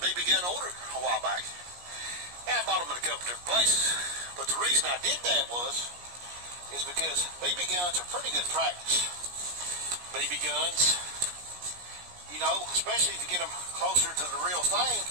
BB gun order a while back. And I bought them in a couple different places. But the reason I did that is because BB guns are pretty good practice. BB guns, you know, especially if you get them closer to the real thing,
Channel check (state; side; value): late; left; 17 ms